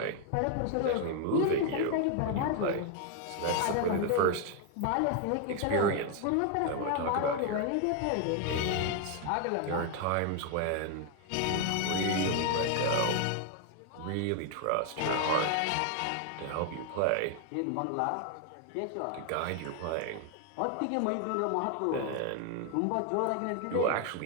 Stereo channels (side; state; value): both; different; correlation 0.00